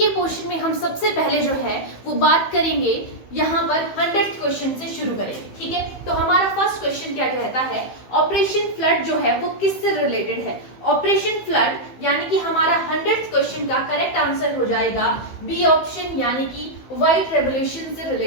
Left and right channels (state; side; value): late; right; 15 ms